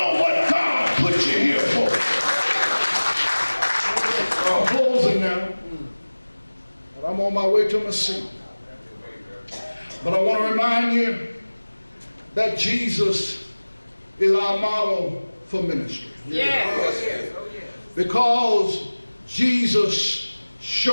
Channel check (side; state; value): both; inverted; correlation -1.00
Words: what God put you here for. I'm closing now. And I'm on my way to my seat. But I want to remind you that Jesus is our model for ministry. Yes. Because Jesus